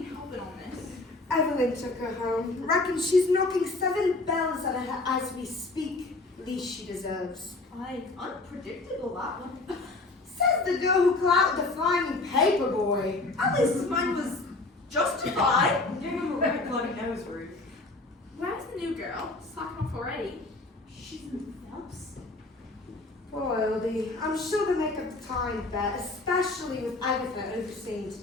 helping on this. Evelyn took her home. Reckon she's knocking 7 bells at her as we speak. Least she deserves. Aye, unpredictable, that one. Says the girl who clouted the flying paper boy. At least mine was justified. Give him a right bloody nose, Ruth. Where's the new girl? Slacking off already. She's in Phelps. Poor Oldie. I'm sure they make up the time bet, especially with Agatha overseeing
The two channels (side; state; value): right; quieter; 3.2 dB